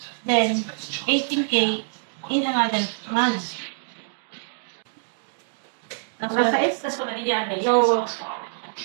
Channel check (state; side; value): silent; left; digital silence